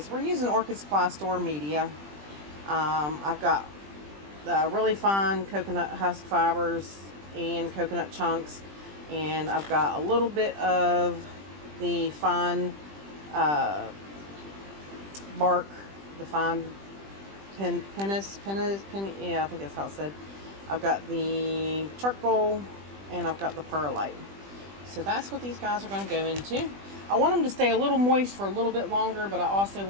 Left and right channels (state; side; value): late; left; 20 ms